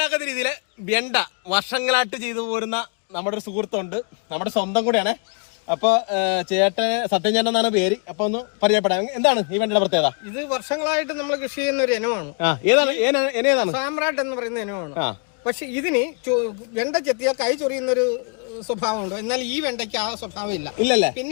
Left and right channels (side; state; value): right; quieter; 39.2 dB